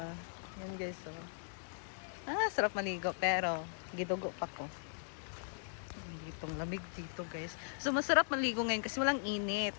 Yan, guys, oh. Sarap maligo, pero gidugo pa ko. Ditong lamig dito, guys. So, masarap maligo ngayon kasi walang init.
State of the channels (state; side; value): silent; right; digital silence